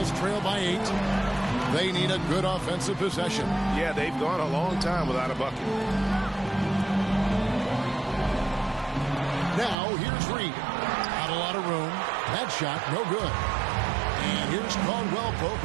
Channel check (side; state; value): left; drops out; at 9.8 s